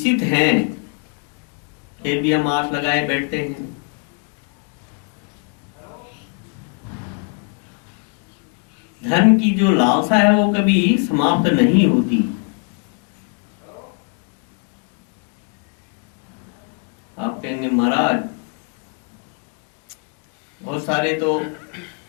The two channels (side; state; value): right; quieter; 38.2 dB